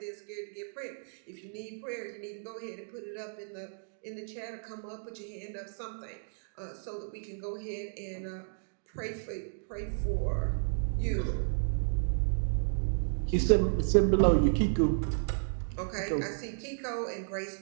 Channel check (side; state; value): left; silent; digital silence